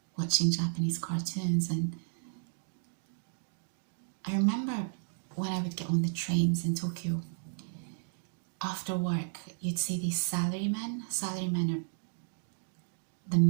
watching Japanese cartoons. And I remember when I would get on the trains in Tokyo, after work, you'd see these salarymen. Salarymen are the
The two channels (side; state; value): left; silent; digital silence